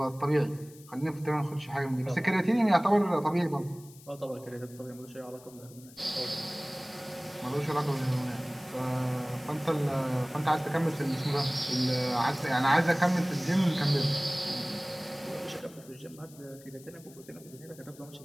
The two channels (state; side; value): noise; left; hiss, 22 dB below the sound